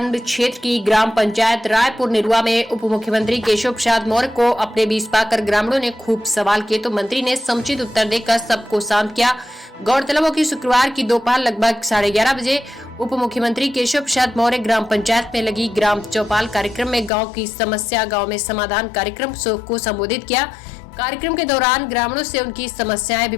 क्षेत्र की ग्राम पंचायत रायपुर निरुआ में उप मुख्यमंत्री केशव प्रसाद मौर्य को अपने बीच पाकर ग्रामीणों ने खूब सवाल किए तो मंत्री ने समुचित उत्तर देकर सबको शांत किया। गौरतलब हो कि शुक्रवार की दोपहर लगभग 11:30 बजे उप मुख्यमंत्री केशव प्रसाद मौर्य ग्राम पंचायत में लगी ग्राम चौपाल कार्यक्रम में गाँव की समस्या गाँव में समाधान कार्यक्रम को संबोधित किया। कार्यक्रम के दौरान ग्रामीणों से उनकी समस्याएं भी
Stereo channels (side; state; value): right; drops out; at 17.1 s